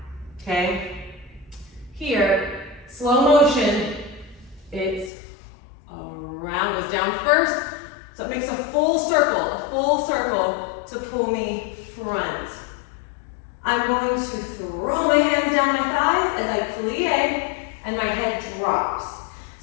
okay? Here, slow motion, it's around, goes down first, so it makes a full circle to pull me front. I'm going to throw my hands down my thighs as I plie, and my head drops.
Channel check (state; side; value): drops out; right; at 5.1 s